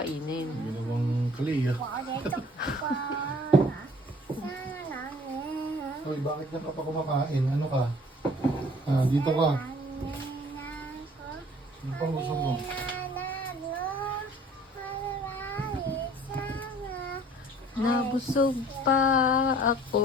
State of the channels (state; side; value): normal; both; correlation 0.53